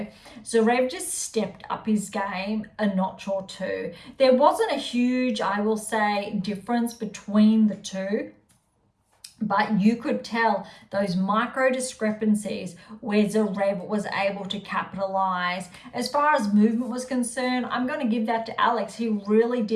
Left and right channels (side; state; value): both; identical; correlation 1.00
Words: Zverev just stepped up his game a notch or two. There wasn't a huge, I will say, difference between the two. But you could tell those micro discrepancies where Zverev was able to capitalize. As far as movement was concerned, I'm going to give that to Alex. He really